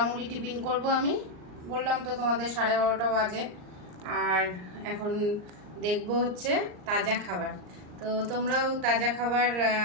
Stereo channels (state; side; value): late; left; 39 ms